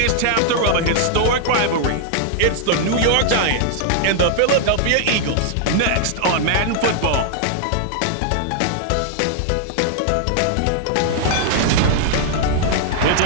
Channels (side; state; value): both; different; correlation -0.01